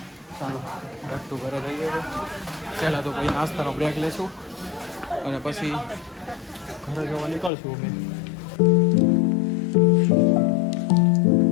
ચાલો બેક ટુ ઘરે જઈએ. પહેલાં તો કોઈ નાસ્તાનો બ્રેક લેશું અને પછી ઘરે જવા નીકળશું અમે.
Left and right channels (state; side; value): drops out; right; at 7.5 s